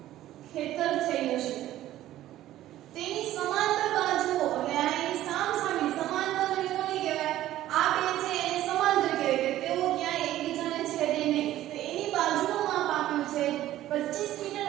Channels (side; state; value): left; quieter; 13.9 dB